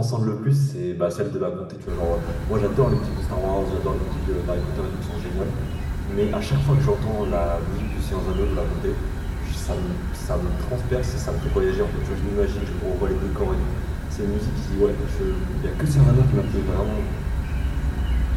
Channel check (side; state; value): both; identical; correlation 1.00